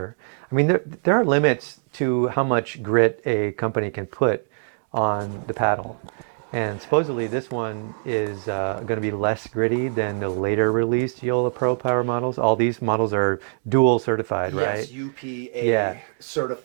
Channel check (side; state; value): left; silent; digital silence